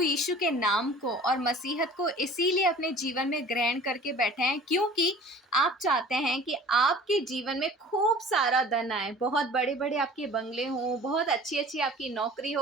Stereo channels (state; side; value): normal; both; correlation 0.45